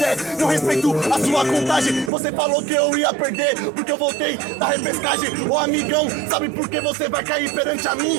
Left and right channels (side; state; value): left; drops out; at 2.1 s